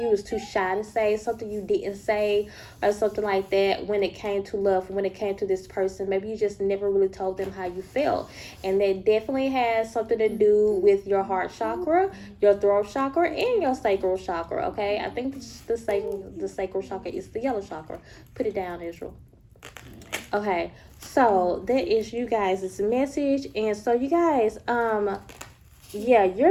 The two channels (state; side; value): identical; both; correlation 1.00